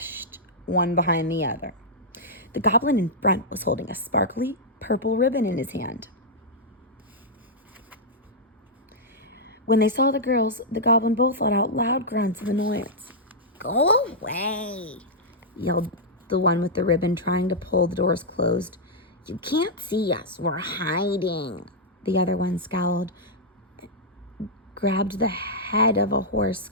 one behind the other. The goblin in front was holding a sparkly purple ribbon in his hand. When they saw the girls, the goblin both let out loud grunts of annoyance. Go away, yelled the one with the ribbon, trying to pull the doors closed. You can't see us. We're hiding. The other one scowled, grabbed the head of a horse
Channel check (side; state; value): both; normal; correlation -0.08